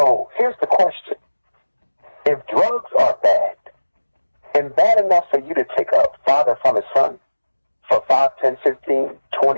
here's the question. If drugs are bad, and bad enough for you to take a father from his son for 5, 10, 15,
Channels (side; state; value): both; inverted; correlation -1.00